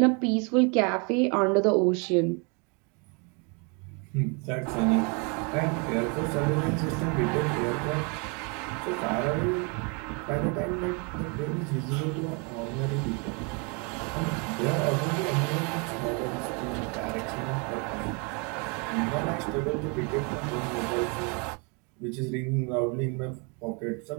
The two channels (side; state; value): left; quieter; 33.5 dB